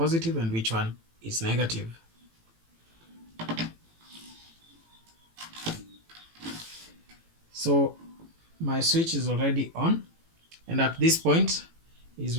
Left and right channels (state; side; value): late; left; 18 ms